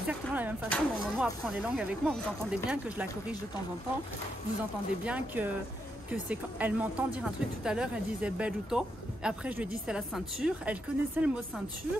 la même façon dont Momo apprend les langues avec moi. Vous entendez bien que je la corrige de temps en temps, vous entendez bien que c'est quand elle m'entend dire un truc tout à l'heure, elle disait belluto, après je lui ai dit c'est la ceinture, elle connaissait le mot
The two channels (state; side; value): normal; both; correlation 0.81